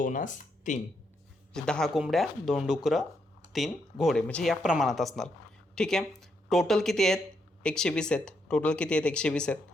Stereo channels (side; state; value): both; normal; correlation 0.78